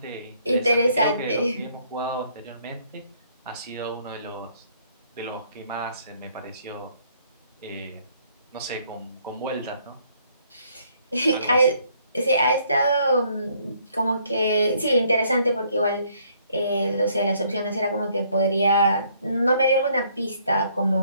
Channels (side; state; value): both; inverted; correlation -0.65